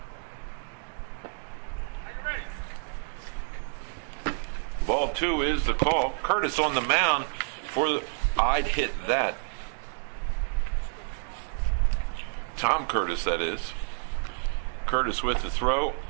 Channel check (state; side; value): silent; left; digital silence